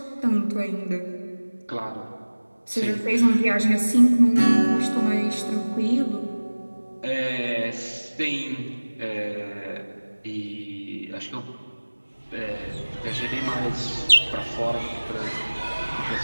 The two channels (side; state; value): both; inverted; correlation -1.00